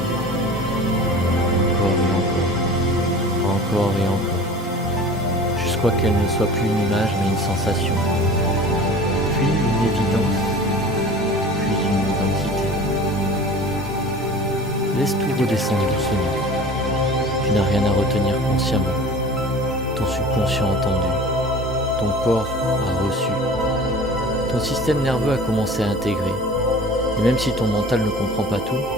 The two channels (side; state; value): both; normal; correlation 0.40